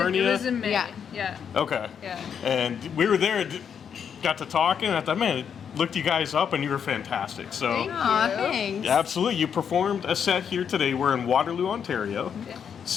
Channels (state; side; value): quieter; right; 7.6 dB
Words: It was in May. Yeah. Okay. Yeah. And we were there, got to talking, and I thought, man, looked you guys up, and you were fantastic. So, Aw, thanks. absolutely, you performed a set here today. We're in Waterloo, Ontario. Yeah.